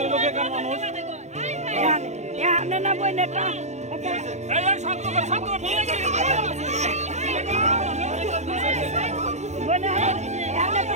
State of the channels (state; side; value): late; left; 0.33 ms